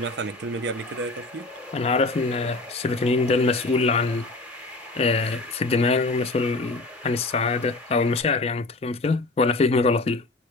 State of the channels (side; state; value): right; quieter; 3.1 dB